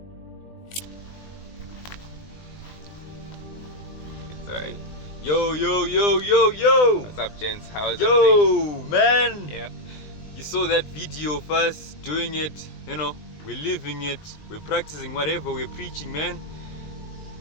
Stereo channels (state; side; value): late; right; 20 ms